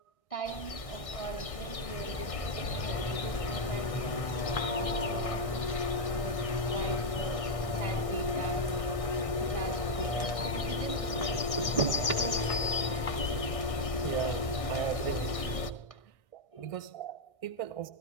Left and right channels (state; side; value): late; right; 1.6 ms